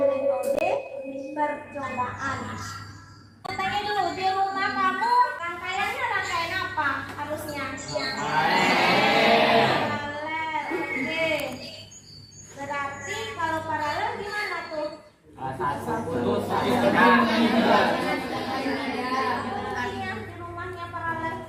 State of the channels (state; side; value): identical; both; correlation 1.00